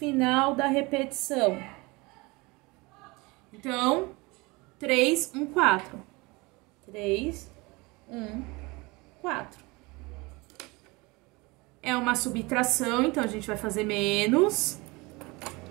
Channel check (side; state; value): left; quieter; 24.6 dB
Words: da repetição. Então, 3, 1, 4. 3, 1, 4. É uma subtração, então a gente vai fazer menos